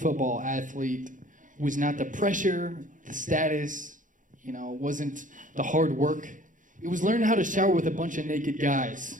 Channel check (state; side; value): late; left; 0.38 ms